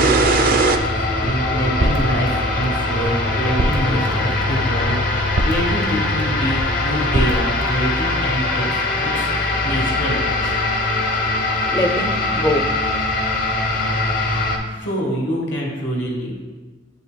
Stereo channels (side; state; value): both; normal; correlation 0.42